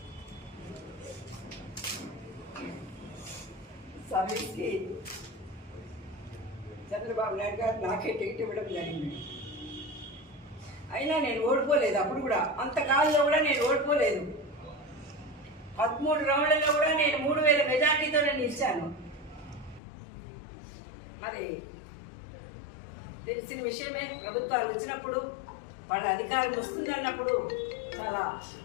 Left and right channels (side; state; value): right; drops out; at 19.8 s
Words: సర్వీస్కి చంద్రబాబు నాయుడు గారు నాకే టికెట్ ఇవ్వడం జరిగింది. అయినా నేను ఓడిపోలేదు. అప్పుడు కూడా అంతకాలంలో కూడా నేను ఓడిపోలేదు. 13 రౌండ్లలో కూడా నేను 3000 మెజార్టీతోనే నిలిచాను. మరి తెలిసిన విషయమే, ప్రభుత్వాలు వచ్చినప్పుడు వాళ్ళ అధికారం వస్తుంది అన్నప్పుడు చాలా